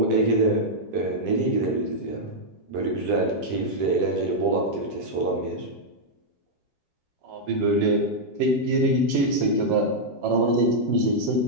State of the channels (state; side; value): late; left; 7.4 ms